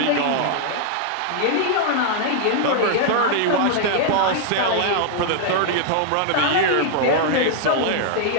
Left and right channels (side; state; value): both; different; correlation -0.01